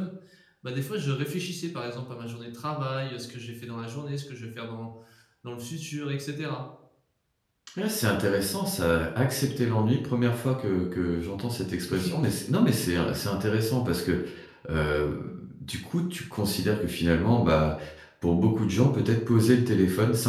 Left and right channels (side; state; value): both; identical; correlation 1.00